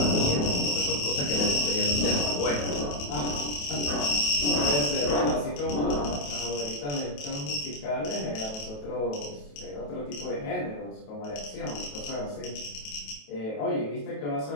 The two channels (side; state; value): right; late; 28 ms